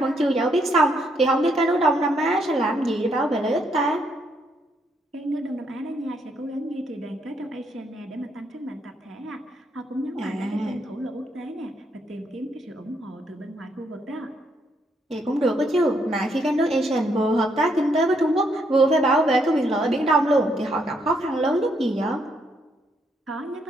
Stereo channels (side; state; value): both; normal; correlation 0.74